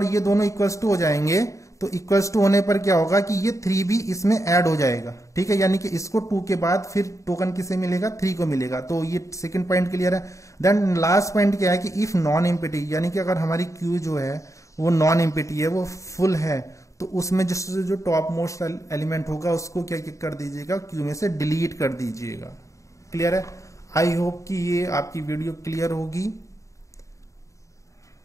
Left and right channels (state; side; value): late; right; 0.15 ms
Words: ये दोनों इक्वल्स टू हो जाएंगे तो इक्वल्स टू होने पर क्या होगा कि ये 3 भी इसमें ऐड हो जाएगा, ठीक है, यानी कि इसको 2 के बाद फिर टोकन किसे मिलेगा, 3 को मिलेगा। तो ये सेकंड पॉइंट क्लियर है। देन लास्ट पॉइंट क्या है कि इफ नॉन एम्प्टी, यानी कि अगर हमारी क्यू जो है वो नॉन एम्प्टी है, वो फुल है, तो उसमें जो टॉप मोस्ट एलिमेंट होगा उसको क्या कर दीजिएगा, क्यू में से डिलीट कर दीजिएगा। क्लियर है। आई होप कि ये आपकी वीडियो क्लियर होगी।